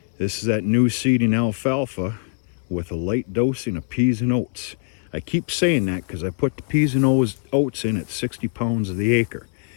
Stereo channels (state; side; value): silent; right; 64 dB below the other